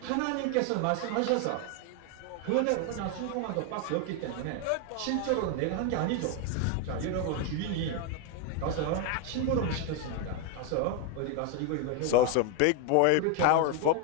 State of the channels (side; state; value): both; different; correlation 0.01